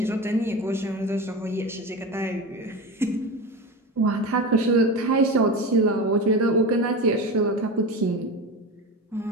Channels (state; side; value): normal; both; correlation 0.25